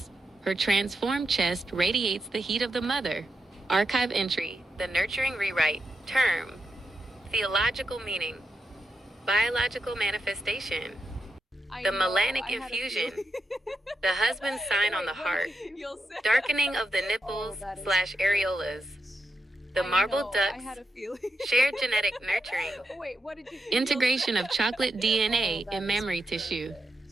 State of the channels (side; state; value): both; normal; correlation 0.85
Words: her transformed chest radiates the heat of the mother. Archive entry, the nurturing rewrite, term, theological meaning, biological manifestation, I the know, melanic I had a infusion, feeling. the husband's sign on the heart, You'll say. darkening of the nipples that is slash areolas, the I marble know, I had ducts, a feeling. shared genetic nurturing, Wait, what did you? integration of chocolate DNA in mammary tissue,